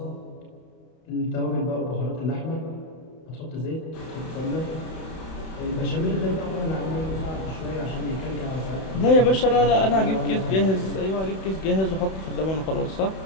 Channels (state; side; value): late; right; 31 ms